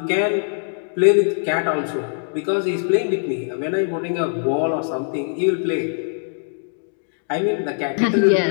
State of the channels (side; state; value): right; silent; digital silence